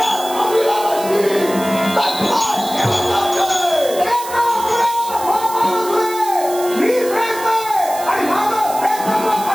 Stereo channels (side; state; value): right; noise; hiss, 12 dB below the sound